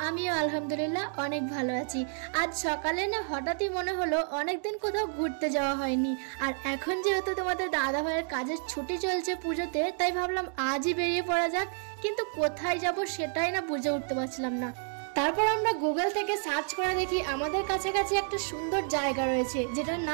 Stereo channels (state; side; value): silent; left; 58 dB below the other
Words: আমিও আলহামদুলিল্লাহ অনেক ভালো আছি। আজ সকালে না হঠাৎই মনে হলো অনেকদিন কোথাও ঘুরতে যাওয়া হয়নি, আর এখন যেহেতু তোমাদের দাদা ভাইয়ের কাজের ছুটি চলছে পুজোতে, তাই ভাবলাম আজই বেরিয়ে পড়া যাক। কিন্তু কোথায় যাব সেটাই না বুঝে উঠতে পারছিলাম না। তারপর আমরা গুগল থেকে সার্চ করে দেখি আমাদের কাছাকাছি একটা সুন্দর জায়গা রয়েছে, যেটার